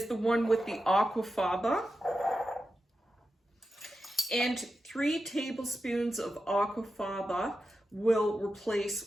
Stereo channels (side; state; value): both; normal; correlation 0.90